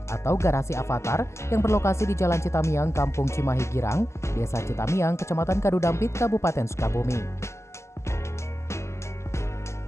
atau Garasi Avatar yang berlokasi di Jalan Citamiang, Kampung Cimahi Girang, Desa Citamiang, Kecamatan Kadudampit, Kabupaten Sukabumi.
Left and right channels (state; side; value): late; right; 0.13 ms